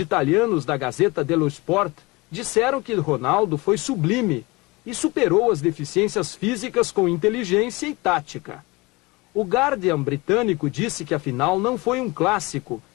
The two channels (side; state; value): right; quieter; 24.0 dB